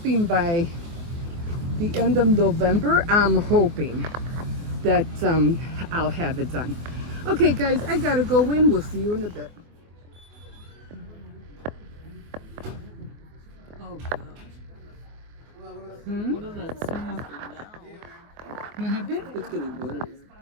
by the end of November, I'm hoping that I'll have it done. Okay, guys, I gotta go in. We'll see you in a bit. What does that say after now? What happened? It's getting blurry.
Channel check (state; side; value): late; left; 24 ms